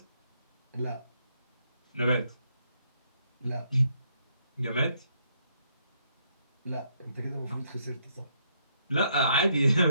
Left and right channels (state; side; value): inverted; both; correlation -0.73